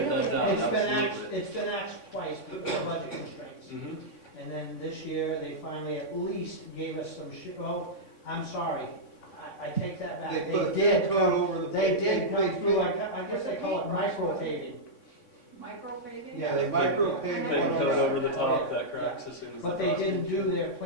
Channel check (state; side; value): late; right; 3.6 ms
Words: that down. Absolutely. It's been axed twice because of budget constraints. Mhm. And then this year, they finally at least gave us some I'm sorry, I take that back. They put a thin coat over the. They did come they- through, I guess they call it micro paving. Micro paving? Yeah, they micro Thin paved Thin one coat on over the the, top that cracks as soon as. But the they frost didn't hits. do their